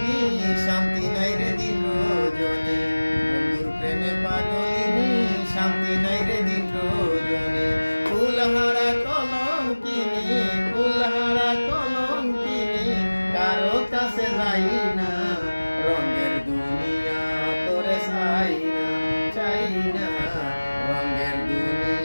শান্তি নাই রে দিন রজনী বন্ধুর প্রেমে পাগলিনী শান্তি নাই রে দিন রজনী ফুলহারা কলঙ্কিনী কারো কাছে যাই না রঙের দুনিয়া তোরে চাই না রঙের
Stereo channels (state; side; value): inverted; both; correlation -1.00